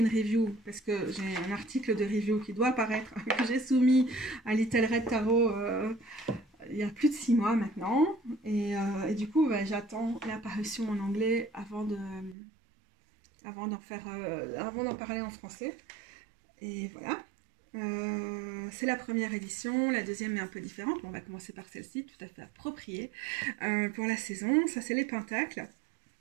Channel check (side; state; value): left; drops out; at 12.4 s